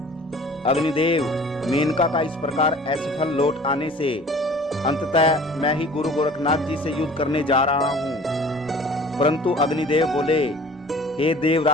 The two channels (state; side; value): normal; both; correlation 0.47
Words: अग्निदेव, मेनका का इस प्रकार असफल लौट आने से अंततः मैं ही गुरु गोरखनाथ जी से युद्ध करने जा रहा हूँ। परंतु अग्निदेव बोले, हे